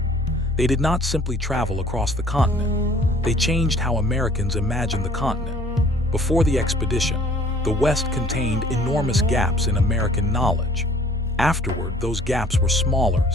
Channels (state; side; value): normal; both; correlation 0.54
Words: They did not simply travel across the continent. They changed how Americans imagined the continent. Before the expedition, the West contained enormous gaps in American knowledge. Afterward, those gaps were smaller